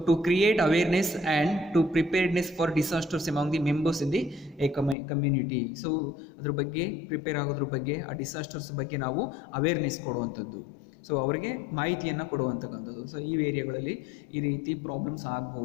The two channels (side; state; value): right; drops out; at 5.0 s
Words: to create awareness and to preparedness for disasters among the members in the a community. So ಅದ್ರ ಬಗ್ಗೆ, ಪ್ರಿಪೇರ್ ಆಗೋದ್ರ ಬಗ್ಗೆ, ಆ ಡಿಸಾಸ್ಟರ್ಸ್ ಬಗ್ಗೆ ನಾವು ಅವೇರ್ನೆಸ್ ಕೊಡುವಂಥದ್ದು, ಸೊ ಅವರಿಗೆ ಮಾಹಿತಿಯನ್ನು ಕೊಡುವಂತಕ್ಕಂಥದ್ದು. ಸೊ ಈ ಏರಿಯಾಗಳಲ್ಲಿ ಈ ರೀತಿ ಪ್ರಾಬ್ಲಮ್ಸ್